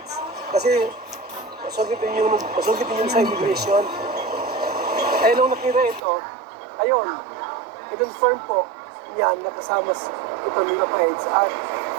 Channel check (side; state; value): left; drops out; at 6.0 s